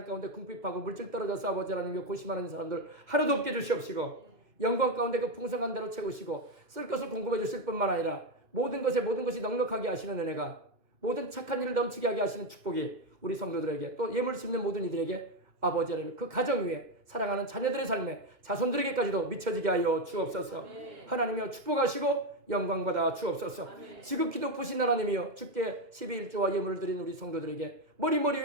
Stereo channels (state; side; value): late; left; 2.1 ms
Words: 가운데 궁핍하고 물질 떨어져서 아버지 하나님께 고심하는 사람들 하나도 없게 주시옵시고 영광 가운데 그 풍성한 대로 채우시고 쓸 것을 공급해 주실 뿐만 아니라 모든 것이 넉넉하게 하시는 은혜가 모든 착한 일을 넘치게 하게 하시는 축복이 우리 성도들에게 또 예물 심는 모든 이들에게 아버지 하나님 그 가정 위에 사랑하는 자녀들의 삶에 자손들에게까지도 미쳐지게 하여 주옵소서. 하나님이여 축복하시고 영광받아 주옵소서. 지극히 높으신 하나님이여 주께 12일조와 예물을 드린 우리 성도들에게 머리